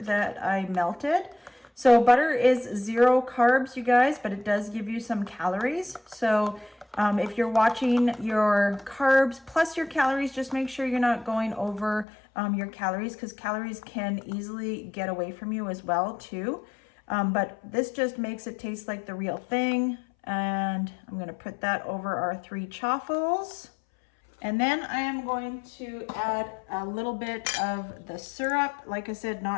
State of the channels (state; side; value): drops out; right; at 12.1 s